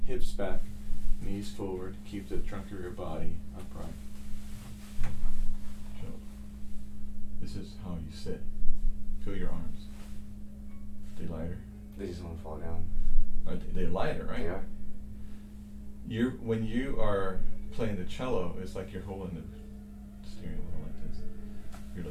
Hips back, knees forward. Keep the trunk of your body upright. Shoulder. This is how you sit. Feel your arms. They lighter? They just won't fall down. They're lighter, right? Yeah. When you are playing the cello, it's like you're holding the steering wheel like this. You're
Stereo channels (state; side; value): identical; both; correlation 1.00